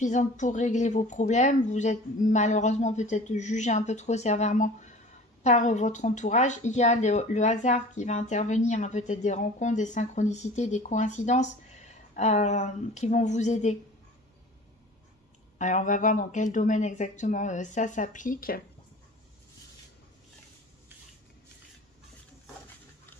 pour régler vos problèmes. Vous êtes malheureusement peut-être jugé un peu trop sévèrement par votre entourage. Il y a le hasard qui va intervenir, hein, peut-être des rencontres, des synchronicités, des coïncidences qui vont vous aider. Alors on va voir dans quel domaine exactement ça s'applique.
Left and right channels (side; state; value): both; normal; correlation 0.42